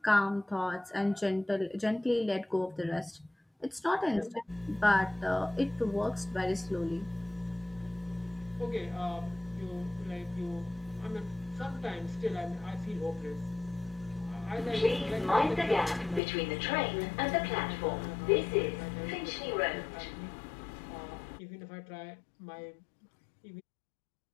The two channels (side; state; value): right; drops out; at 16.2 s